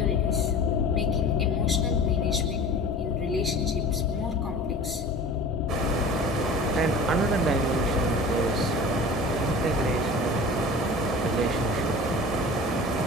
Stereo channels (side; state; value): both; normal; correlation 0.39